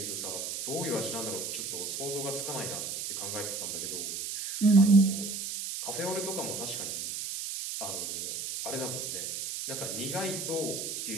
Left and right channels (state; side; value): noise; right; hiss, 4 dB below the sound